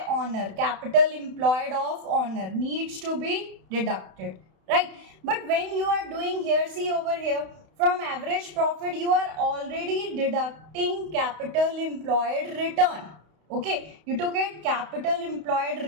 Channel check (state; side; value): late; left; 32 ms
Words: owner, capital employed of owner needs to be deducted, right? But when you are doing here, see over here, from average profit you are already deducting capital employed return. Okay, you took it, capital employed